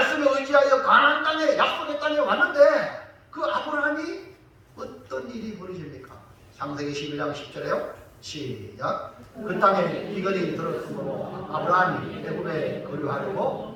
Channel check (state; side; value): identical; both; correlation 1.00